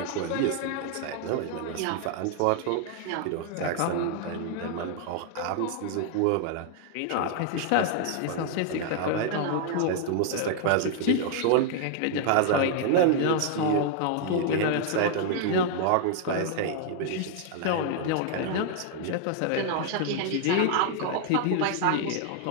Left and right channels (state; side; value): different; both; correlation 0.00